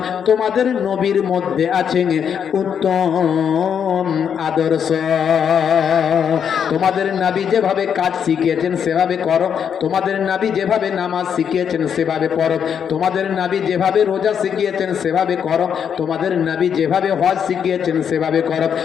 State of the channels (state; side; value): quieter; right; 7.8 dB